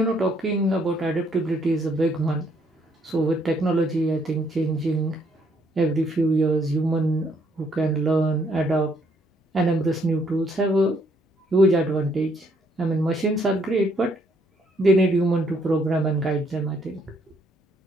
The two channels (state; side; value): normal; both; correlation 0.69